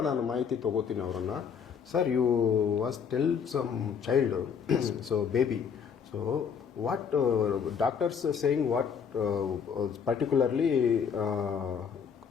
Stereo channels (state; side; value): quieter; right; 6.9 dB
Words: ನಾನು ಮಾಹಿತಿ ತೊಗೋತೀನಿ ಅವರನ್ನು. Sir, you was tell some child, so baby, so what doctors saying what particularly